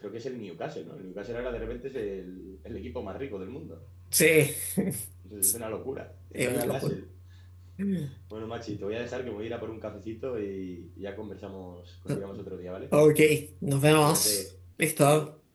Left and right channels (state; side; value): identical; both; correlation 1.00